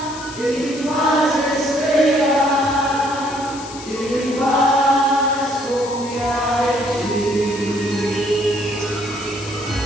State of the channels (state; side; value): noise; left; hiss, 14 dB below the sound